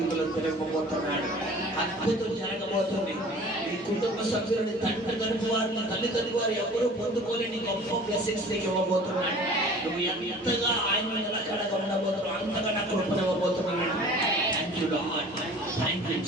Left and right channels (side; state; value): both; normal; correlation 0.45